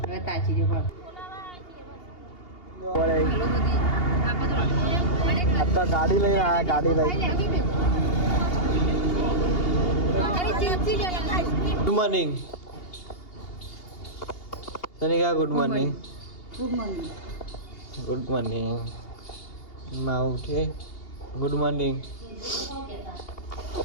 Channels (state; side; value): late; right; 2.8 ms